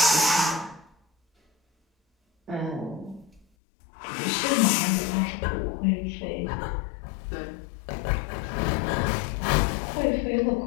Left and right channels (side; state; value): right; drops out; at 3.5 s